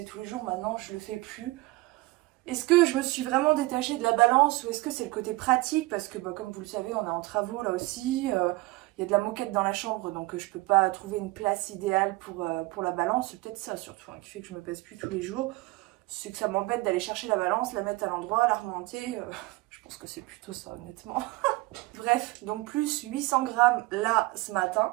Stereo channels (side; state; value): left; quieter; 21.5 dB